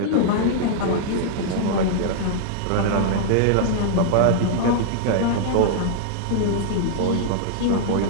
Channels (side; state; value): both; different; correlation -0.01